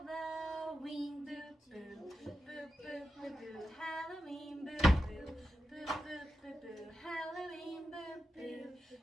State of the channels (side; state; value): both; normal; correlation 0.90